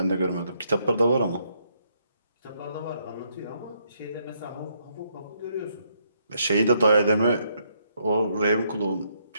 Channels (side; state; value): both; inverted; correlation -0.74